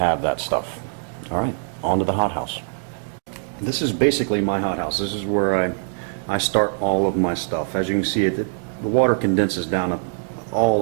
that stuff. Alright, on to the hothouse. This is basically my hothouse. This is where I start all of my stuff. As you can see, the water condenses down all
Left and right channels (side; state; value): left; silent; digital silence